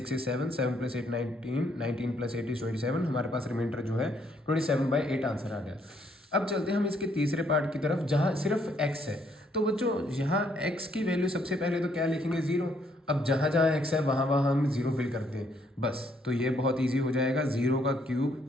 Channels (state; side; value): normal; both; correlation 0.70